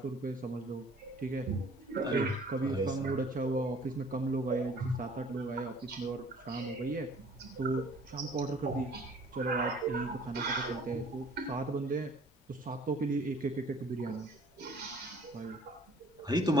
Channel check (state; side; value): normal; both; correlation 0.54